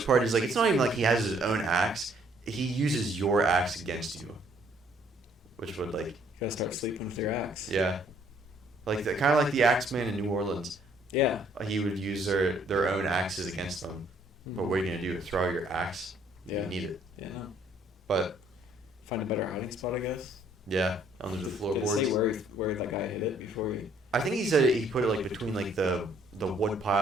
part is like it's not even like he has his own axe. He uses your axe against you, which would like You gotta start sleeping with your axe. yeah, like the kind of like the Axeman in New Orleans. Yeah. He would use their own axes against them. But what are you gonna do? Throw your axe? Yeah. You need it. Yeah. But Find a better hiding spot, I guess. yeah, under the Did it floorboards. say where that guy hit it before he? I think he said he put it like between like the wood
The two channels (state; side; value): normal; both; correlation 0.64